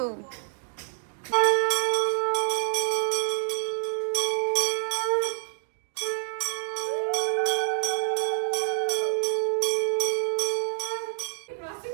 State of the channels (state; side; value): silent; left; digital silence